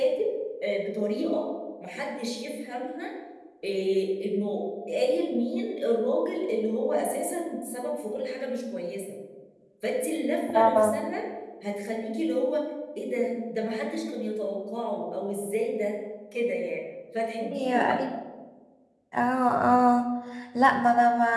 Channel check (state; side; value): identical; both; correlation 1.00